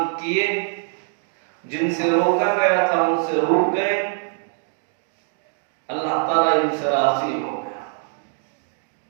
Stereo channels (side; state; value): left; silent; 57 dB below the other